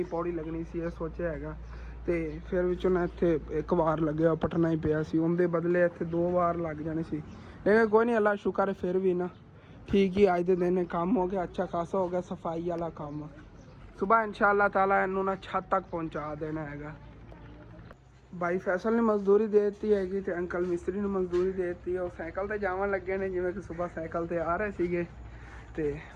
ਪੌੜੀ ਲੱਗਣੀ ਸੀ, ਇਹ ਸੋਚਿਆ ਹੈਗਾ। ਤੇ ਫਿਰ ਵਿੱਚੋਂ ਨਾ ਇੱਥੇ ਇੱਕ ਵਾਰ ਲੱਗਿਆ, ਪਟਣਾ ਹੀ ਪਿਆ ਸੀ, ਉਹਦੇ ਬਦਲੇ ਇੱਥੇ 2 ਵਾਰ ਲੱਗ ਜਾਣੇ ਸੀ। ਲੇਕਿਨ ਕੋਈ ਨਹੀਂ, ਅੱਲਾ ਸ਼ੁਕਰ ਹੈ ਫਿਰ ਵੀ ਨਾ ਠੀਕ ਹੀ ਅੱਜ ਦੇ ਦਿਨ ਕੰਮ ਹੋ ਗਿਆ, ਅੱਛਾ ਖਾਸਾ ਹੋ ਗਿਆ ਸਫਾਈ ਵਾਲਾ ਕੰਮ। ਸੁਬਾਹ ਇਨਸ਼ਾਅੱਲਾ ਤਾਲਾ ਇਹਨੂੰ ਨਾ ਛੱਤ ਤੱਕ ਪਹੁੰਚਾ ਦੇਣਾ ਹੈਗਾ। भाई फैसल ने मजदूरी दे दी हैगी ते अंकल मिस्त्री ने मजदूरी दे दी। वो साइकिल ते जावन लगे ने, जिवें कि सुबह साइकिल ते आ रहे सीगे। ते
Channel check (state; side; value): identical; both; correlation 1.00